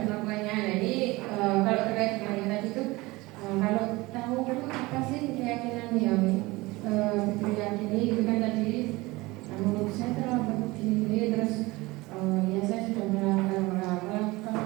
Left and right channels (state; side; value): quieter; left; 21.6 dB